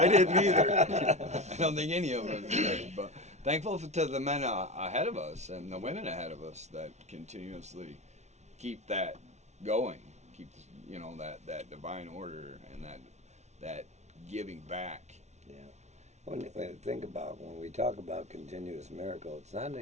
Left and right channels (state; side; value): late; left; 0.32 ms